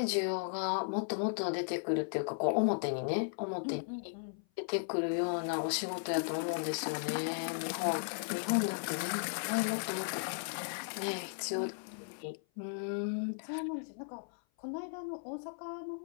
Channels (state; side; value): silent; right; 54 dB below the other